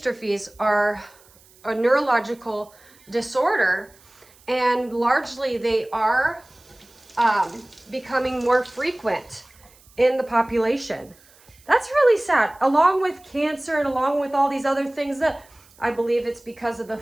are a neurological disorder, and largely they are becoming more frequent in the population. That's really sad, along with cancer and along with all these other things that I believe it's because of the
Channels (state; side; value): noise; right; hiss, 28 dB below the sound